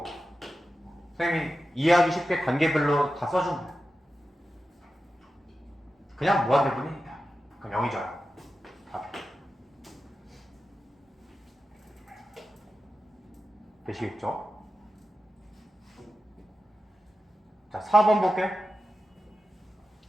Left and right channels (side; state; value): both; normal; correlation 0.91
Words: 선생님이 이해하기 쉽게 단계별로 다 써준 거야. 그냥 무한대분이니까. 그럼 0이죠. 답. 되시겠죠? 자, 4번 볼게.